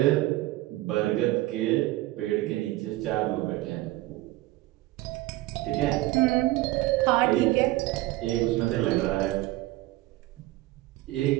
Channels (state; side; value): quieter; left; 17.7 dB